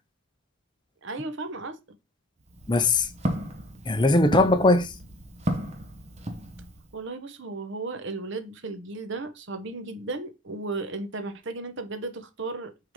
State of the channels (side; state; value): both; normal; correlation 0.47